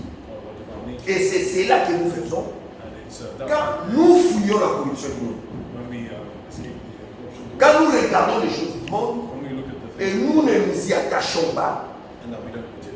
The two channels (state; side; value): identical; both; correlation 1.00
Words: nature. Et c'est cela que nous faisons And it's that quand nous fuyons la corruption du monde. when we escape the corruption, Quand nous regardons les choses du monde when we look at the et things nous ne nous y attachons pas, and that we don't put